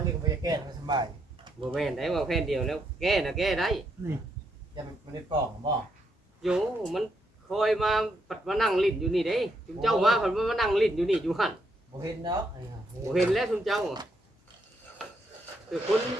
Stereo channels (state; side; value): normal; both; correlation 0.77